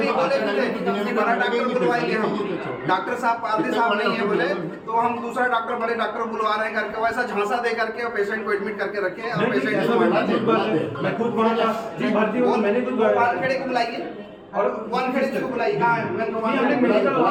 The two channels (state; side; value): identical; both; correlation 1.00